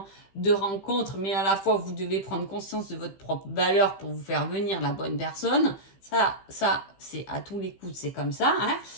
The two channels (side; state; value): right; late; 15 ms